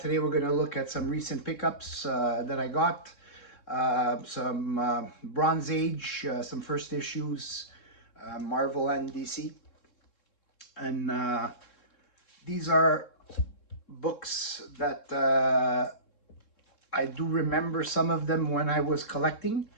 we're going to look at some recent pickups that I got. Some Bronze Age, some first issues, Marvel and DC. And these are books that I do remember some of them when I was collecting.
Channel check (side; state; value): right; late; 3.7 ms